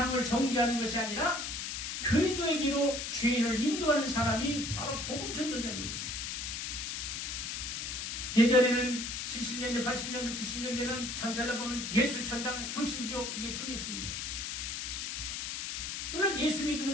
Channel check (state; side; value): noise; left; hiss, 4 dB below the sound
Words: 정죄하는 것이 아니라 그리스도의 길로 죄인을 인도하는 사람이 바로 복음 전도자입니다. 예전에는 70년대, 80년대, 90년대는 전철로 보면 예수 천당, 불신지옥 이게 통했습니다. 물론 예수